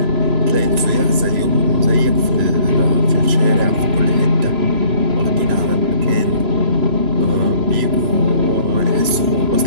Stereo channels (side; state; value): left; late; 3.0 ms